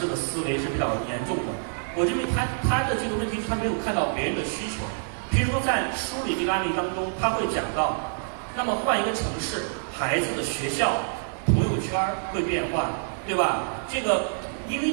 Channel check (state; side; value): silent; left; 59 dB below the other